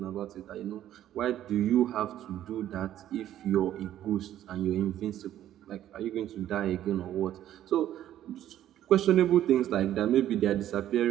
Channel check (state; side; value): quieter; left; 12.1 dB